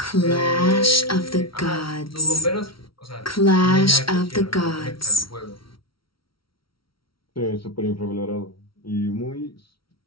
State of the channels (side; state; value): right; late; 0.74 ms